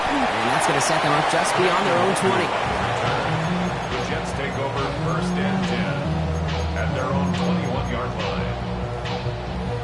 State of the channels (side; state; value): both; identical; correlation 1.00